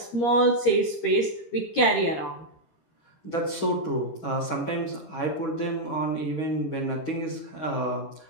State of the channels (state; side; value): late; right; 13 ms